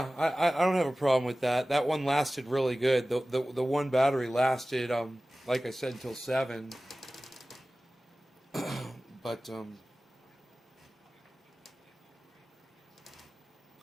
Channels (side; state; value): both; normal; correlation 0.97